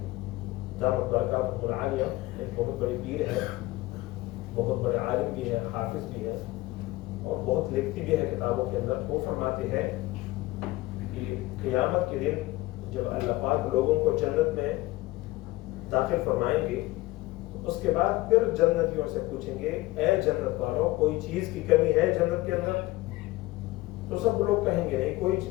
دامت برکاتہ العالیہ ایک بہت بڑی پیر ہے، بہت بڑے عالم بھی ہے، حافظ بھی ہے، اور بہت لکھتی بھی ہے کتابوں کے اندر. وہ فرماتے ہیں کہ قیامت کے دن جب اللہ پاک لوگوں کو جنت میں داخل فرمائیں گے، اس کے بعد پھر جنتیوں سے پوچھیں گے اے جنت والوں کوئی چیز کی کمی ہے جنت کے اندر؟ تو سب لوگ کہیں گے نہیں، کوئی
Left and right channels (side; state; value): right; quieter; 19.2 dB